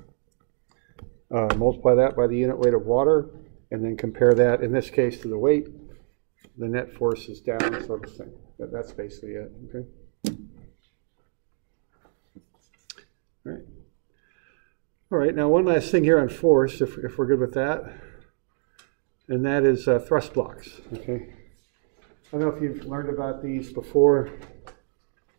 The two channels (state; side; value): silent; left; 61 dB below the other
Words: multiply that by the unit weight of water, and then compare that, in this case, to the weight. The net force is down, so the same. That's basically it, okay? All right. All right, now one last thing here on force, if we're good with that, and that is thrust blocks, okay? I don't know if you've learned about these before,